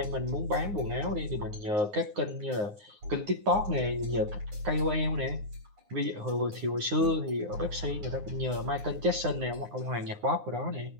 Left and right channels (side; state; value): left; late; 9.6 ms